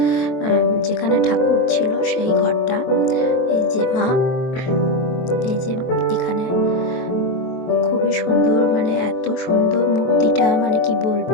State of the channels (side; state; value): right; late; 23 ms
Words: যেখানে ঠাকুর ছিল সেই ঘরটা। এই যে মা, এই যে এখানে খুবই সুন্দর, মানে এত সুন্দর মূর্তিটা, মানে কি